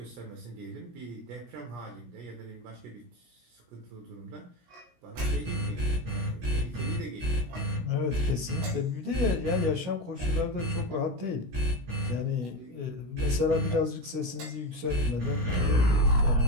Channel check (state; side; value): late; left; 17 ms